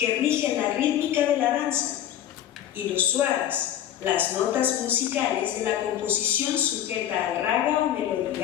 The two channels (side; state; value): right; quieter; 11.1 dB